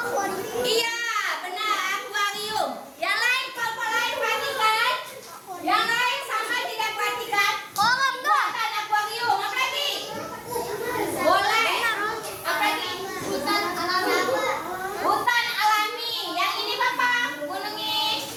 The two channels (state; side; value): identical; both; correlation 1.00